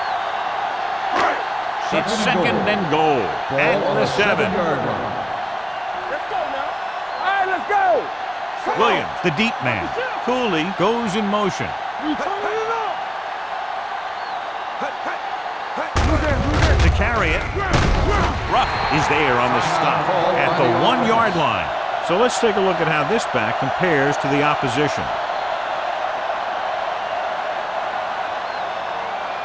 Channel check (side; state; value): both; identical; correlation 1.00